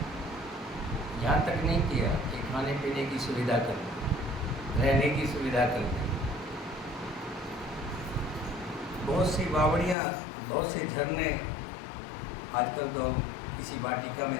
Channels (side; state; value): right; drops out; at 10.0 s